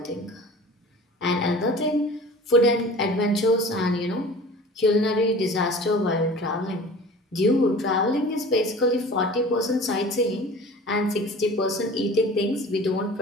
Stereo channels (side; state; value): both; normal; correlation 0.41